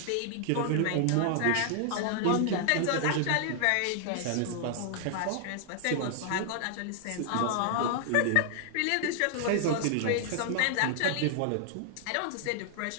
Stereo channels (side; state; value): both; different; correlation 0.00